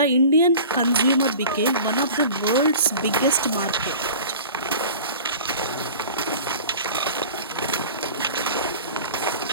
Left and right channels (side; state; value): both; inverted; correlation -0.40